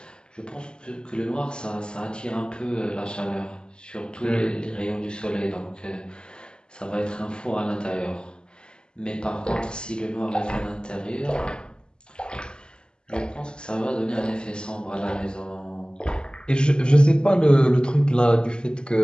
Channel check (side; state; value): right; late; 0.049 ms